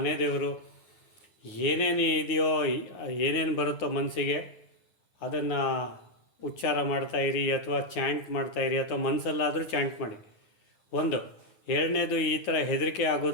ದೇವರು, ಏನೇನು ಇದೆಯೋ, ಏನೇನು ಬರುತ್ತೋ ಮನಸ್ಸಿಗೆ ಅದನ್ನು ಉಚ್ಚಾರ ಮಾಡ್ತಾಯಿರಿ, ಅಥವಾ ಚಾಂಟ್ ಮಾಡ್ತಾಯಿರಿ, ಅಥವಾ ಮನಸ್ಸಲ್ಲಾದರೂ ಚಾಂಟ್ ಮಾಡಿ. ಒಂದು. ಎರಡನೇದು, ಈ ಥರ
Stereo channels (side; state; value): right; late; 10 ms